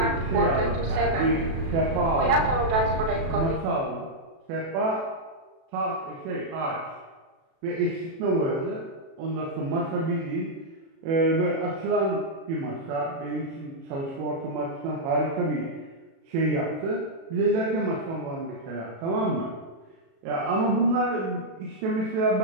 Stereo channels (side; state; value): left; late; 36 ms